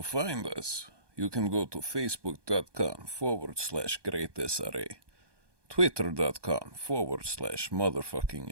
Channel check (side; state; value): left; late; 1.2 ms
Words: find us, you can go to facebook.com/greatsra,